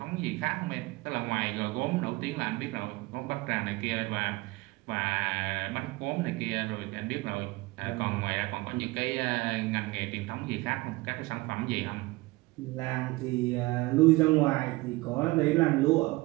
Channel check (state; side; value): quieter; left; 21.9 dB